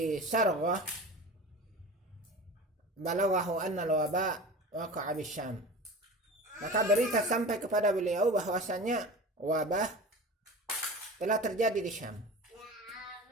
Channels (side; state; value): both; normal; correlation 0.34